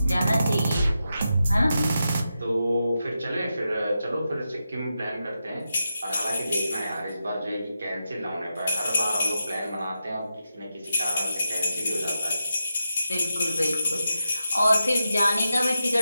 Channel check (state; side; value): inverted; both; correlation -0.87